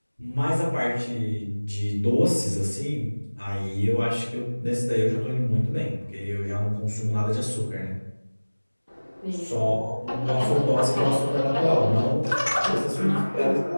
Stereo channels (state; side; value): inverted; both; correlation -1.00